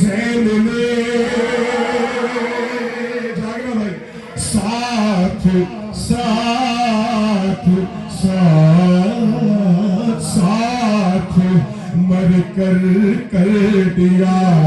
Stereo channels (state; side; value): identical; both; correlation 1.00